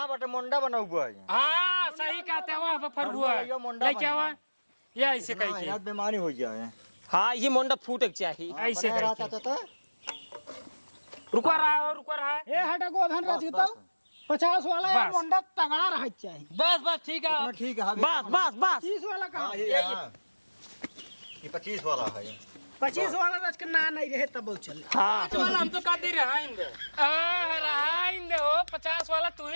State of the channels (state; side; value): inverted; both; correlation -1.00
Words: बटे मोंडा बना हुआ है हां सही कहते हो वहां पर हुआ लेके आवा ये ऐसे कह के याद बीमारी हो जाए हाँ ये मोंडा फूटे चाहिए ऐसे रहता था रुको रहा ए हटा गोधन रह जीतो 50 वाला है मोंडा तगड़ा रह चाहिए बस ठीक है ठीक है बस 30 वाला कहां ये 25 वाला है 25 वाला रच के ना नहीं रहे तब चल हाँ वाला हम तो कहते रहेंगे हो 50 वाला तू